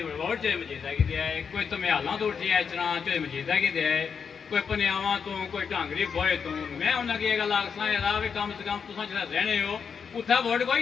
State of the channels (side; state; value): right; quieter; 6.4 dB